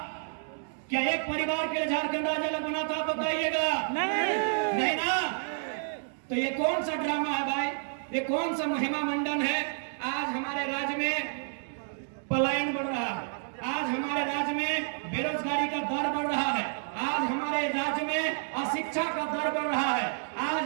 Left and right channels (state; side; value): silent; left; digital silence